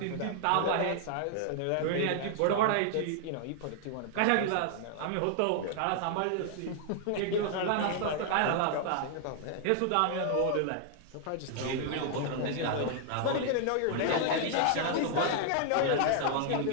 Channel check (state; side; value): different; both; correlation 0.00